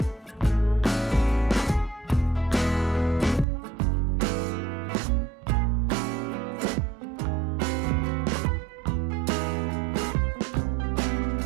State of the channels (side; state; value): left; drops out; at 3.5 s